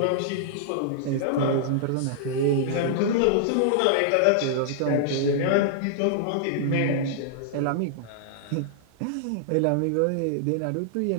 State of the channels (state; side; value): different; both; correlation -0.01